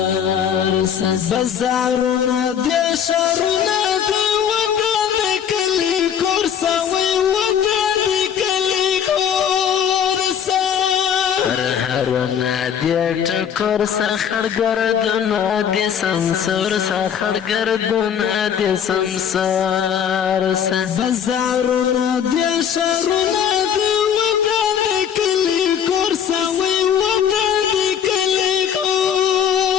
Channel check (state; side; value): quieter; right; 8.5 dB